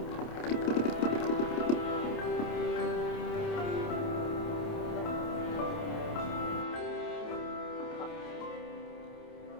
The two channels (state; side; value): late; right; 28 ms